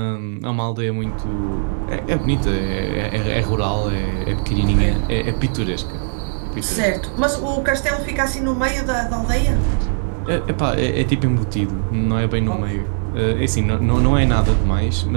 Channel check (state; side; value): silent; left; 66 dB below the other